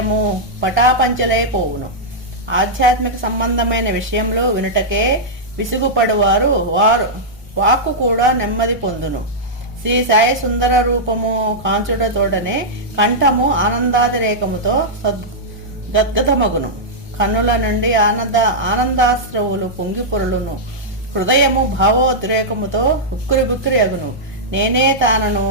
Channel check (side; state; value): both; normal; correlation -0.09